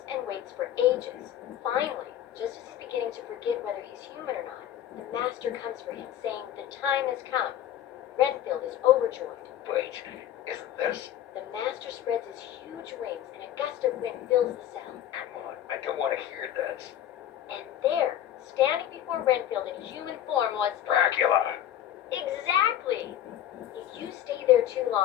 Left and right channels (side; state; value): right; quieter; 11.3 dB